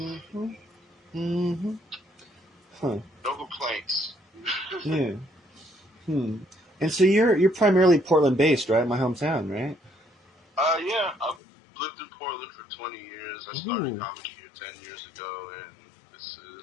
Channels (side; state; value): right; drops out; at 11.4 s